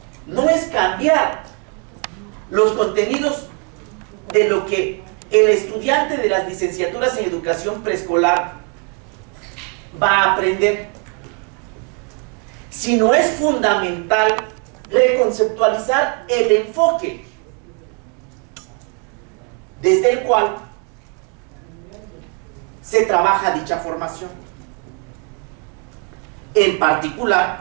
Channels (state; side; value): quieter; left; 36.0 dB